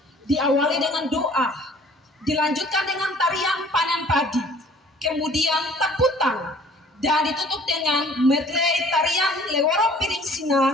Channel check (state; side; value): normal; both; correlation 0.53